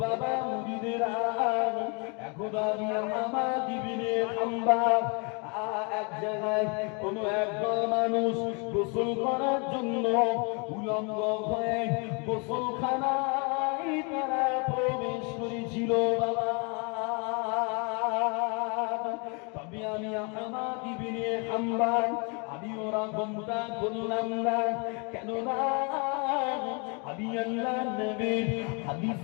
বাবা মুরিদেরা, এখন আমি আহমদ ইবনে হাম্বল এক জায়গায় কোন একদল মানুষ গোসল করার জন্য উলঙ্গ হয়ে গোসলখানায় তারা প্রবেশ করেছিল বাবা। তবে আমি আহমদ ইবনে হাম্বল আমি ওরা গমটা করলাম না, কেননা আমি আল্লাহর নবীর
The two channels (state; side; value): quieter; right; 33.5 dB